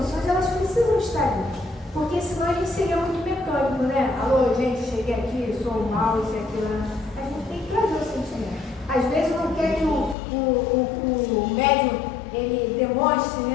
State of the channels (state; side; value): drops out; right; at 10.2 s